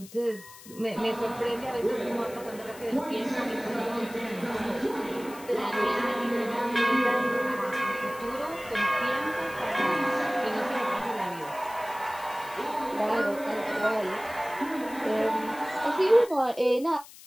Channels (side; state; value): left; noise; hiss, 19 dB below the sound